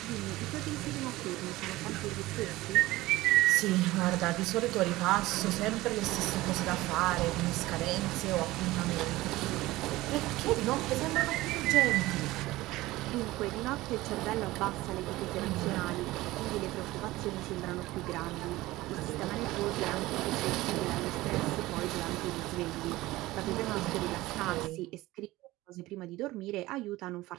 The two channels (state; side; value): quieter; left; 18.3 dB